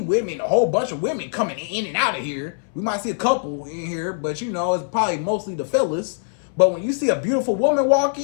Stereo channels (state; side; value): silent; right; 64 dB below the other